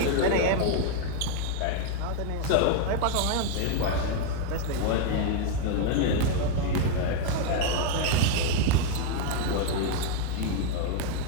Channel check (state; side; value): different; both; correlation 0.00